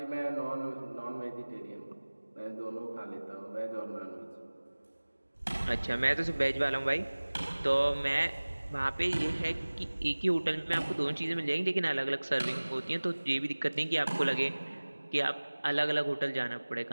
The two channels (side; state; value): both; inverted; correlation -1.00